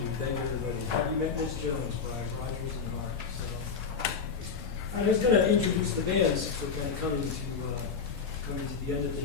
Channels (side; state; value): right; quieter; 5.8 dB